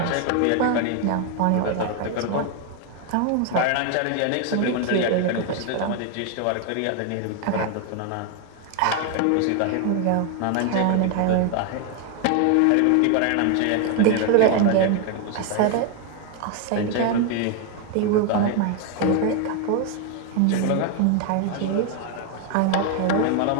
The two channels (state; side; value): different; both; correlation 0.01